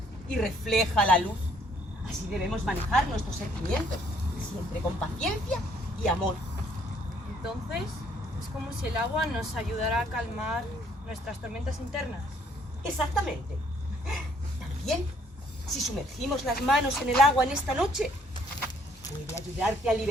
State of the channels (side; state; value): both; normal; correlation 0.64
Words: y refleja la luz. Así debemos manejar nuestros sentimientos, siempre con paciencia y amor. Entonces, es como si el agua nos ayudara a calmar nuestras tormentas internas. Exactamente. También, si sumergimos las manos en el agua en esta noche, puede ayudarte a